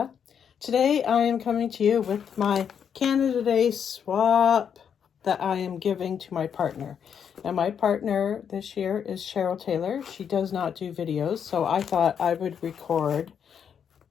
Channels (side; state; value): right; quieter; 7.8 dB